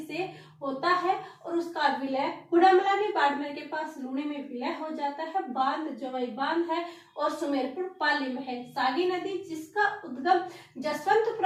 होता है और उसका विलय कुड़मलानी बाड़मेर के पास लूणी में विलय हो जाता है। बांध जवाई बांध है और सुमेरपुर पाली में है। सागी नदी जिसका उद्गम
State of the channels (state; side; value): identical; both; correlation 1.00